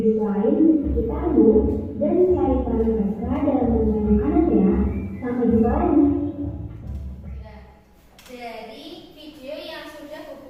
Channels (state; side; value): identical; both; correlation 1.00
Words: lain di sekitarmu dan cari peran mereka dalam rantai makanan ya. Sampai jumpa lagi. Dari video yang sudah